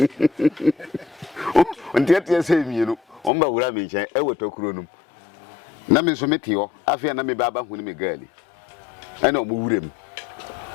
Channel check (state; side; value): drops out; right; at 3.3 s